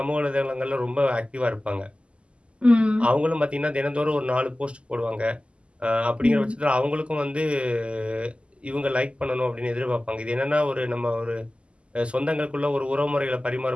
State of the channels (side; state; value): left; late; 0.054 ms